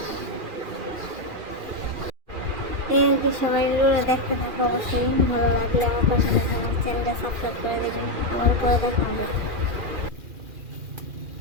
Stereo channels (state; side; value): late; left; 2.4 ms